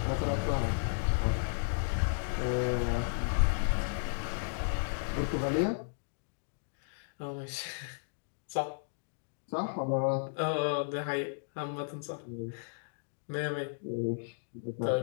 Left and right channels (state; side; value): silent; right; digital silence